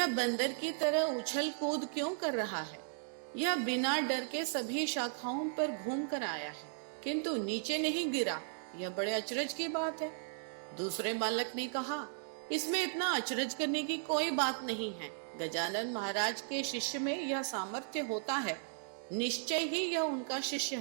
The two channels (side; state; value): left; silent; digital silence